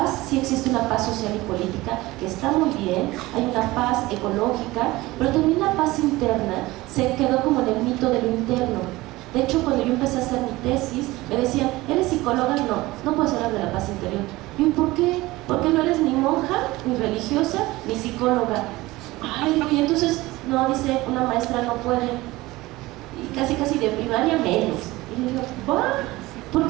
sí existe una paz social y política, que está muy bien, hay una paz ecológica, pero también la paz interna se quedó como en el mito de lo interno. De hecho, cuando yo empecé a hacer mi tesis, me decían, ¿eres psicóloga? No puedes hablar de la paz interior. Y yo, ¿por qué? Porque no eres ni monja, ni religiosa, ni psicóloga. Ay, y entonces, no, dice, una maestra no puede. Y casi de primaria menos. Y yo digo, ¿va?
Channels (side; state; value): left; quieter; 19.5 dB